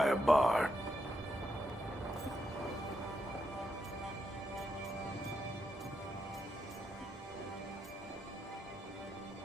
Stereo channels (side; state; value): both; normal; correlation 0.82